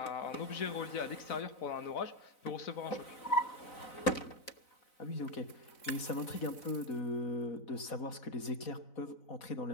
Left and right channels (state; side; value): late; right; 4.0 ms